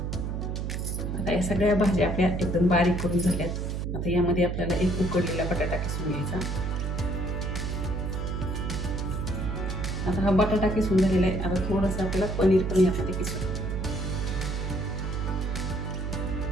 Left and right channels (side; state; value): right; noise; hum, 2 dB below the sound